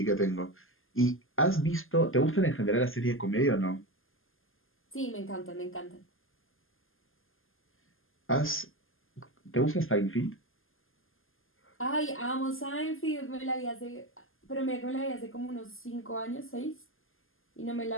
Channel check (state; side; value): late; right; 0.59 ms